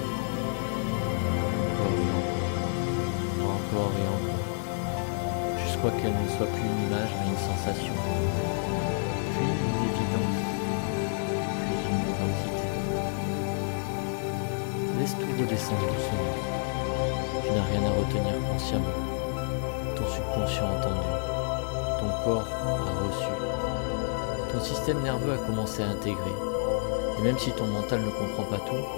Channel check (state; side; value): silent; right; digital silence